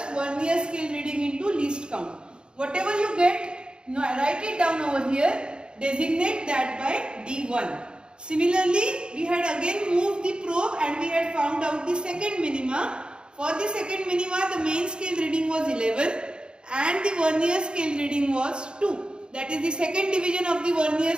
vernier scale reading into least count. Whatever you get, write it down over here, designate that by D1. Similarly, we had again moved the probe and we had found out the second minima. For the second minima, the main scale reading was 11 and the vernier scale reading was 2. That is, the second division of the vernier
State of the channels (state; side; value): late; left; 0.050 ms